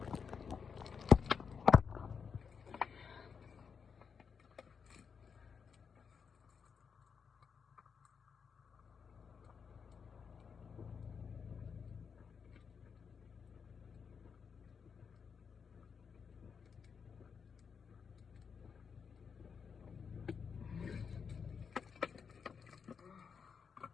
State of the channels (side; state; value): right; quieter; 6.2 dB